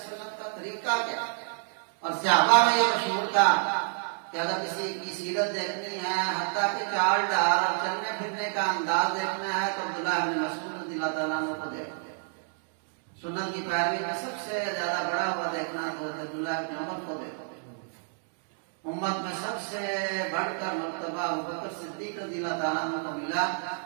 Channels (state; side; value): silent; left; 58 dB below the other